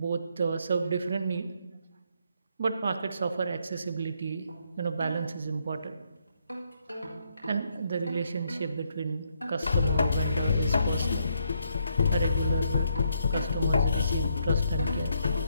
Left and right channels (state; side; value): inverted; both; correlation -0.75